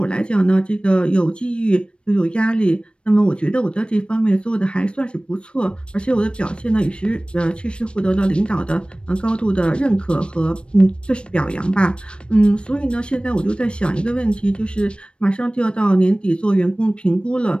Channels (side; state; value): right; late; 0.057 ms